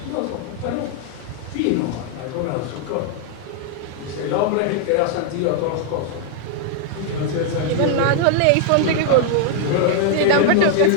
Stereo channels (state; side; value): different; both; correlation 0.00